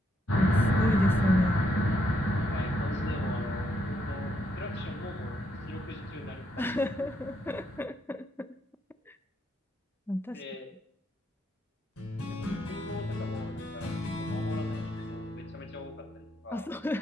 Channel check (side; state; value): both; normal; correlation 0.76